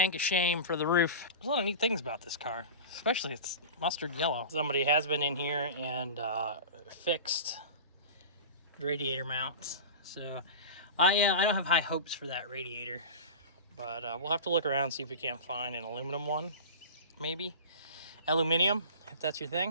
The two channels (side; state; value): both; inverted; correlation -0.31